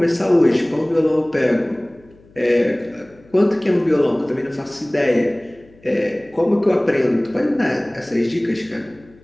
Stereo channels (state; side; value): noise; left; hum, 28 dB below the sound